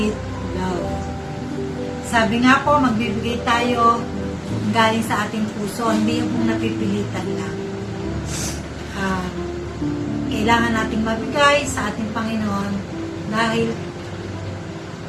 love. Sabi nga po, magbibigay tayo galing sa ating puso, hindi yung napipilitan lang. Kailangan nating magbigay sa ating Panginoon dahil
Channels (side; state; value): both; identical; correlation 1.00